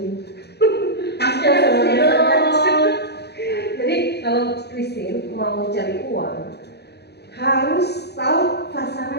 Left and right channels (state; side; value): late; right; 0.48 ms